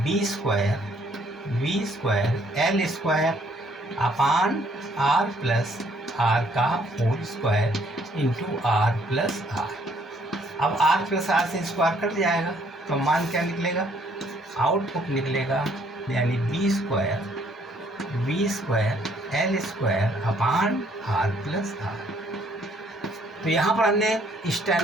square L square upon R plus R का whole square into R plus R. अब आर प्लस आर से स्क्वायर कट जाएगा तो मान क्या निकलेगा, आउटपुट निकलेगा, यानी V square L square upon R plus R. तो यहाँ पर हमने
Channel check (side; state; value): both; normal; correlation 0.65